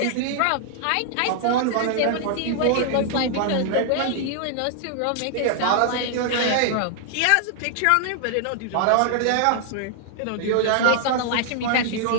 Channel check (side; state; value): both; different; correlation -0.01